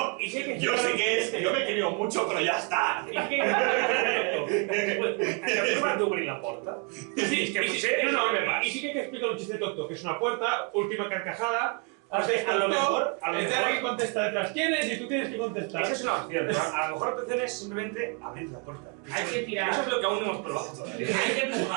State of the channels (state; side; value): quieter; left; 32.9 dB